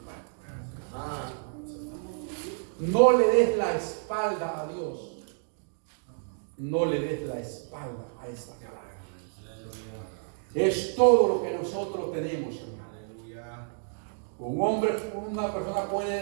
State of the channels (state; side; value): silent; left; digital silence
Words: Ah. No le des la espalda a Dios. No le des la espalda a esta palabra. Es todo lo que nosotros tenemos, hermano. Aleluya. Un hombre, una persona